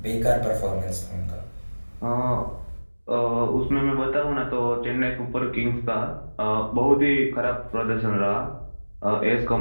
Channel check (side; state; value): both; inverted; correlation -1.00